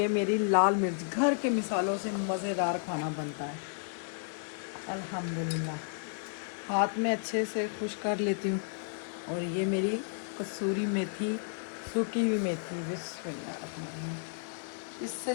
मेरी लाल मिर्च। घर के मिसालों से मज़ेदार खाना बनता है अल्हम्दुलिल्लाह। हाथ में अच्छे से खुश कर लेती हूँ। और ये मेरी कसूरी मेथी, सूखी हुई मेथी। बिस्मिल्लाह। इससे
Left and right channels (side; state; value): right; silent; digital silence